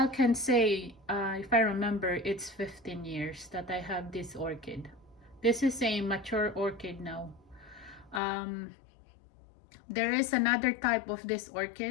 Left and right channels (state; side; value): drops out; right; at 8.2 s